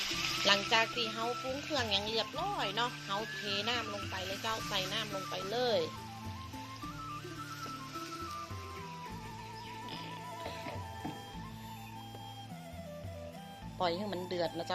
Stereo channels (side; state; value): both; identical; correlation 1.00